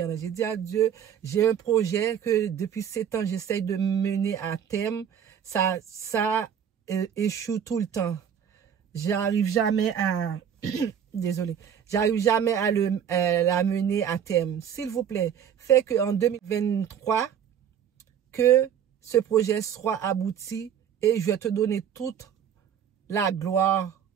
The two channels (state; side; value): quieter; left; 8.7 dB